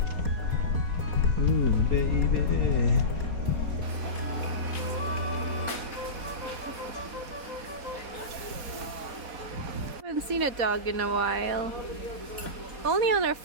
Ooh, baby. Haven't seen a dog in a while. Only on our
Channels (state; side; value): late; left; 4.2 ms